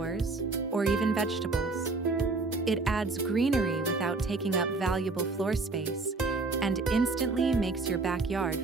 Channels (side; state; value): left; quieter; 3.6 dB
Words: or even vegetables. It adds greenery without taking up valuable floor space and instantly makes your backyard